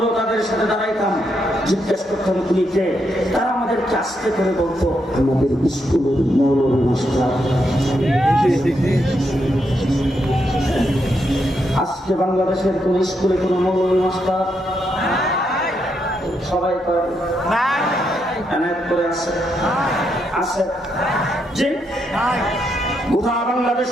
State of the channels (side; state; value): both; normal; correlation 0.80